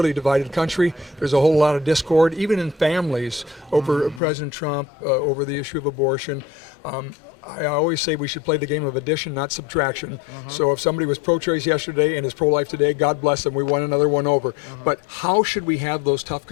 divided country. There's a whole lot of discord, even in families, over President Trump, over the issue of abortion. I always say we should play the game of addition, not subtraction. So if somebody was pro-choice yesterday and is pro-life today, God bless them, we won another one over. But how should we have those tough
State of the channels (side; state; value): right; drops out; at 4.2 s